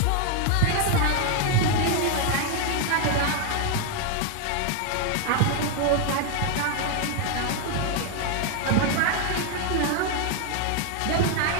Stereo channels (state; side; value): different; both; correlation 0.01